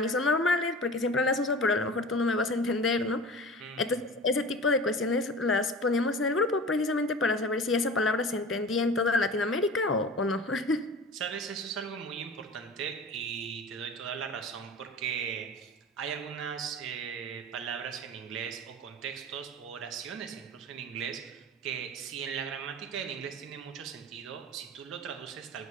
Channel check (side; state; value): both; normal; correlation 0.36